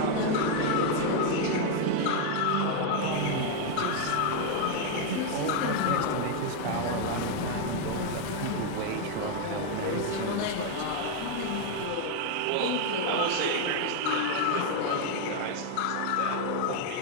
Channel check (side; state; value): both; different; correlation 0.01